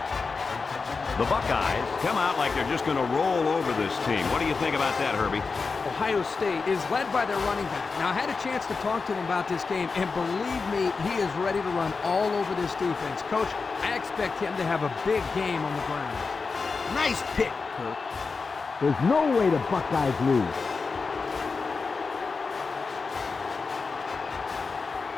The Buckeyes come out like they're just going to roll over this team. What do you think about that, Herbie? Ohio State is led by their running back. Now, I had a chance to talk to him about this game, and believe me, he is ready to run all over this defense. Coach, I expect him to have a big game on the ground. Nice pick, Kirk. There's no way the Buckeyes lose.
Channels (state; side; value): quieter; right; 4.6 dB